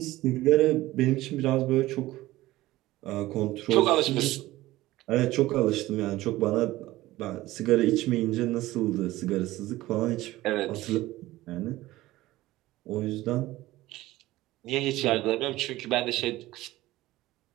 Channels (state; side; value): quieter; left; 17.2 dB